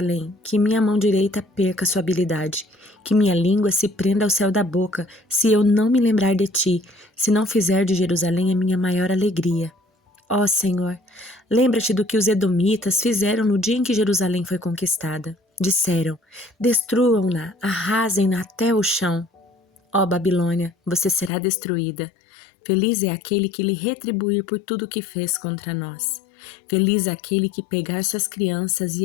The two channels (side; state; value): right; drops out; at 21.3 s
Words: que minha mão direita perca sua habilidade, que minha língua se prenda ao céu da boca, se eu não me lembrar de ti, se não fizer de Jerusalém a minha maior alegria. Ó Senhor, lembra-te do que os edomitas fizeram no dia em que Jerusalém foi conquistada. Disseram, destruam-na, arrasem-na até o chão. Ó Babilônia, você será destruída. Feliz é aquele que lhe retribuir por tudo o que fez contra nós. Feliz é aquele que pegar suas crianças